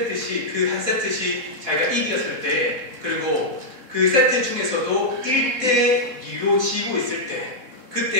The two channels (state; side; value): late; left; 3.6 ms